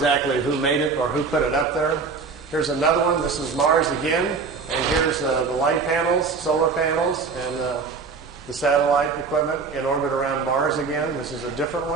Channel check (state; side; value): quieter; left; 4.8 dB